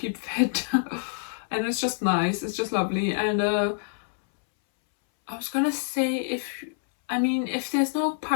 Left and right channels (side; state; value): right; silent; 60 dB below the other